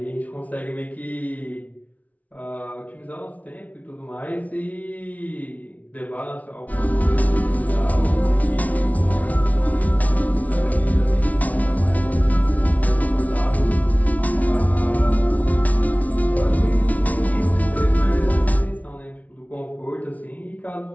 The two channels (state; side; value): late; right; 0.071 ms